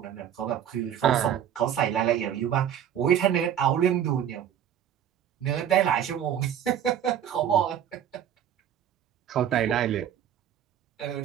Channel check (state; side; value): quieter; left; 9.8 dB